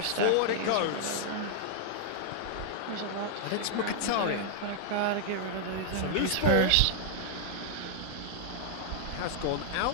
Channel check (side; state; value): both; different; correlation -0.01